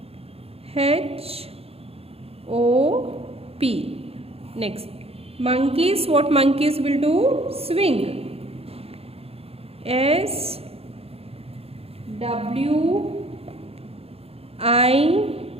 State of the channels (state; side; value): late; left; 0.29 ms